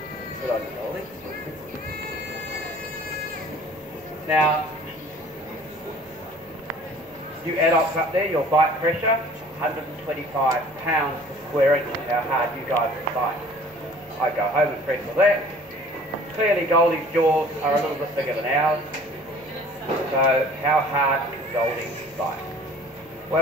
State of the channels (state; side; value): noise; right; hum, 28 dB below the sound